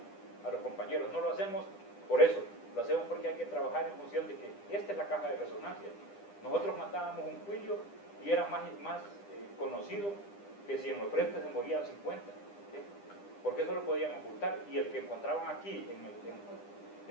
a los compañeros. No lo hacemos por eso, lo hacemos porque hay que trabajar en función de que esta es la caja de resonancia. Nosotros matábamos un cuillo y era más conocido que si en los frentes se morían 50, ¿sí? Porque eso lo podían ocultar, y el que encontraban aquí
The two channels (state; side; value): late; right; 10 ms